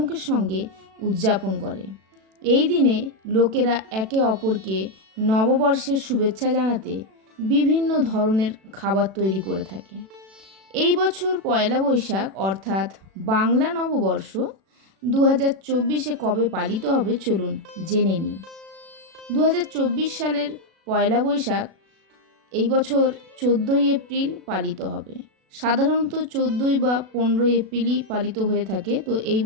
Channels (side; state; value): left; late; 36 ms